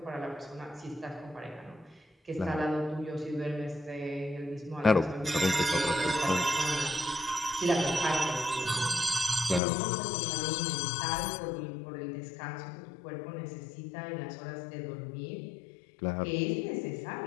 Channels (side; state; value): right; drops out; at 9.6 s